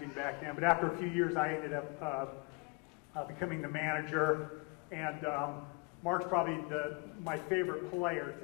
back then, but after a few years I ended up becoming the manager. And Mark's probably my favorite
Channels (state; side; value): quieter; right; 30.2 dB